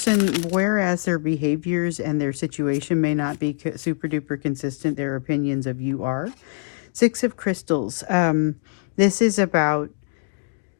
whereas their behaviors and their situation may not be super duper consistent, their opinions of you are. 6 of crystals. This is about,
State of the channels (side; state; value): right; silent; digital silence